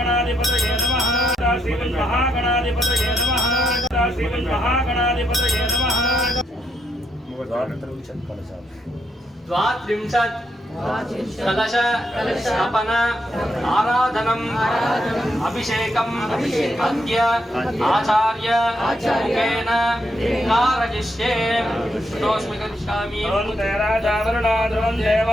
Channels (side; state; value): both; normal; correlation 0.78